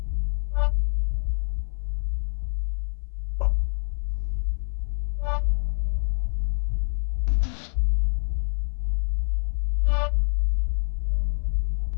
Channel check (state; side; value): silent; right; 60 dB below the other